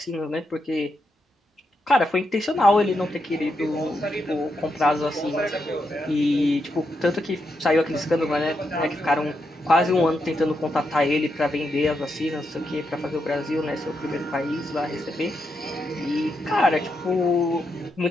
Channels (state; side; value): normal; both; correlation 0.83